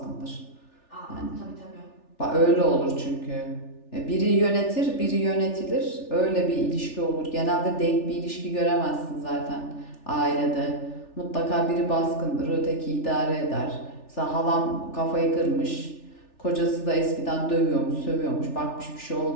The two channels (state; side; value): late; right; 3.4 ms